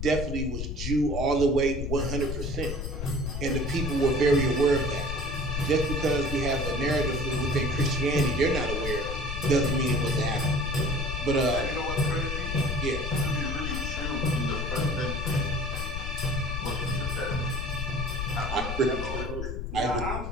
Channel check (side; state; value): left; noise; rumble, 3 dB below the sound